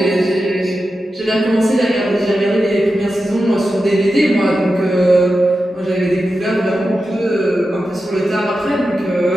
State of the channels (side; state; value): both; normal; correlation 0.91